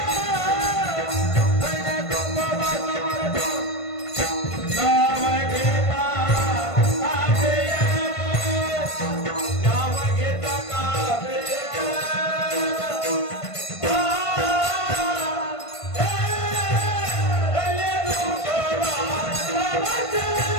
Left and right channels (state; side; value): late; right; 1.5 ms